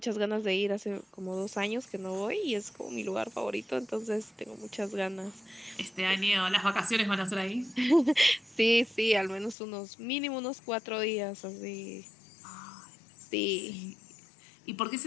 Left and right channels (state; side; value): drops out; right; at 9.6 s